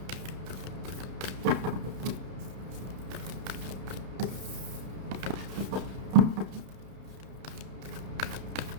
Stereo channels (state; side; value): late; left; 31 ms